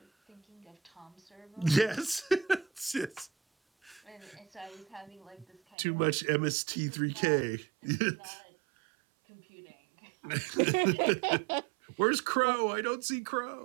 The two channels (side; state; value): left; drops out; at 5.8 s